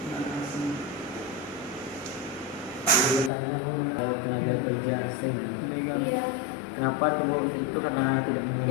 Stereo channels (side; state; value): right; drops out; at 3.3 s